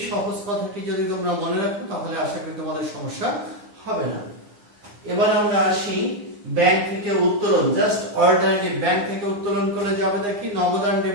সহজ কথাটি যদি তোমরা মনে রাখো তাহলে আশা করি তোমাদের সমস্যা হবে না। এবার আমরা আসি ব্যাংক থেকে উত্তোলন, জাস্ট অল্টারনেটিভ, ব্যাংক থেকে উত্তোলন করে যাবে দেখি নগদ আর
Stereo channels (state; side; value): late; left; 9.8 ms